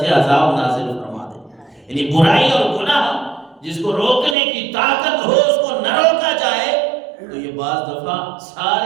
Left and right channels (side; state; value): left; drops out; at 4.4 s